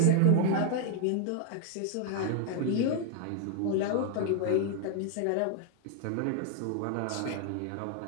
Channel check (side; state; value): both; different; correlation 0.00